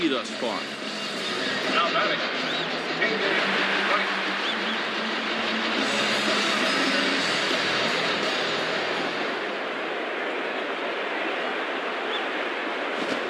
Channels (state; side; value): identical; both; correlation 1.00